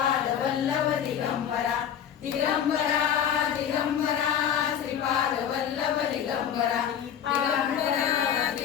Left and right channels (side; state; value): right; quieter; 9.1 dB